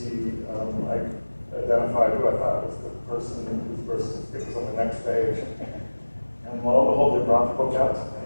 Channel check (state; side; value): inverted; both; correlation -1.00